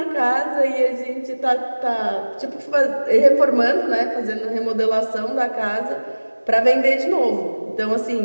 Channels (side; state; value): both; inverted; correlation -1.00